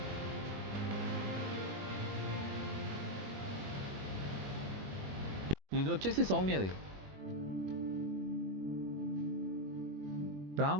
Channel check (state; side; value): late; left; 21 ms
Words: ఇది వచ్చేసి సౌమ్యది.